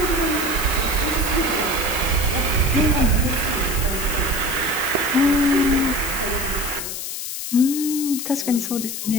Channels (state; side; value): noise; left; hiss, 6 dB below the sound